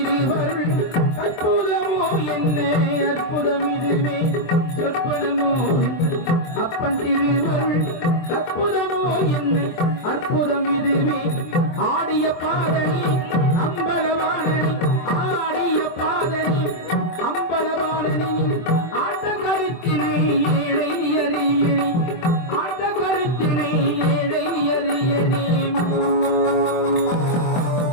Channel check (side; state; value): right; late; 24 ms